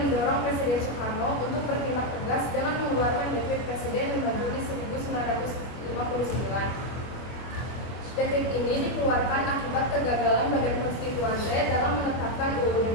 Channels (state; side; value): late; right; 25 ms